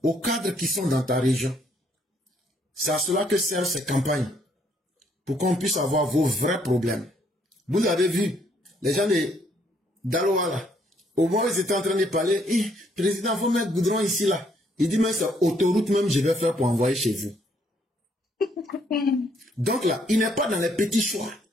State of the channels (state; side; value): normal; both; correlation 0.69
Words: aux cadres qui sont dans ta région. C'est à cela que servent ces campagnes. Pour qu'on puisse avoir vos vrais problèmes. Vous avez vu, les gens d'Aloa là, au moment où ils étaient en train de parler, président, il faut mettre goudron ici là. Il dit, mais c'est autoroute même je vais faire pour envoyer chez vous. Donc là, il n'est pas dans les petits choix.